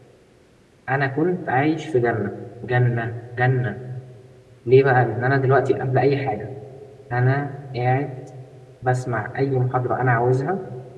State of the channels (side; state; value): both; identical; correlation 1.00